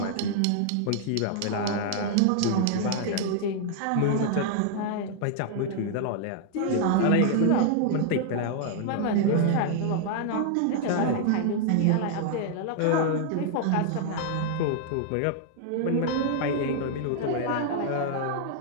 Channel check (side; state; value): both; different; correlation 0.00